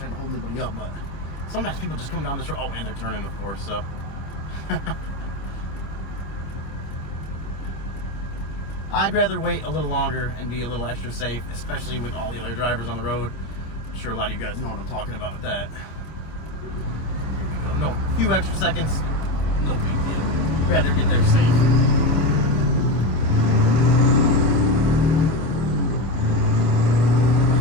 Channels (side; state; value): right; late; 26 ms